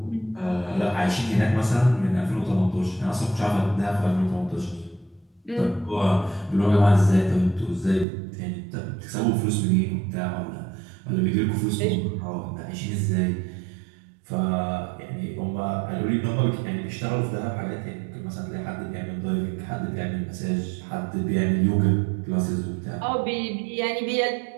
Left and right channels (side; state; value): left; drops out; at 8.1 s